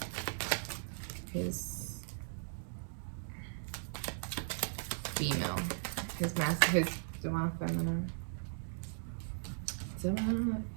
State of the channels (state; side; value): silent; left; digital silence